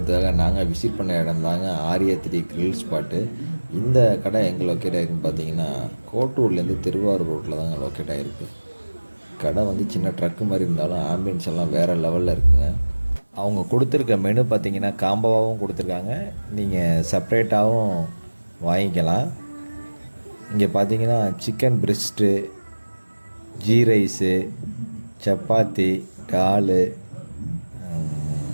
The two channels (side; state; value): both; inverted; correlation -1.00